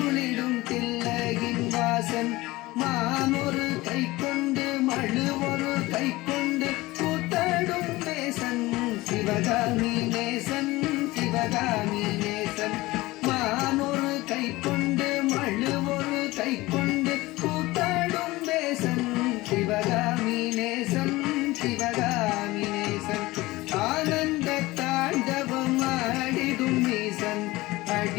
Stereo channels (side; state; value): right; quieter; 19.8 dB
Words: தில்லையின் வாசன். மானொரு கை கொண்டு மழு ஒரு கை கொண்டு கூத்தாடும் நேசன் சிவகாமி நேசன் சிவகாமி நேசன். மானொரு கை கொண்டு மழு ஒரு கை கொண்டு கூத்தாடும் நேசன் சிவகாமி நேசன் சிவகாமி நேசன். ஆனந்த தாண்டவம் ஆடிடும் ஈசன்